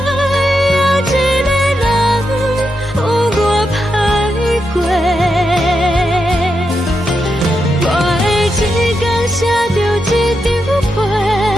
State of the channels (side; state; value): both; normal; correlation 0.85